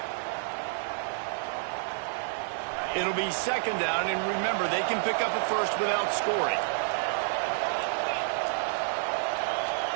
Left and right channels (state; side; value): silent; left; digital silence